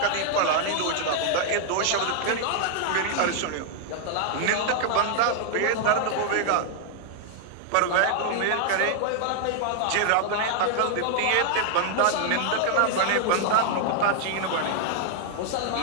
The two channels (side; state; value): both; different; correlation 0.00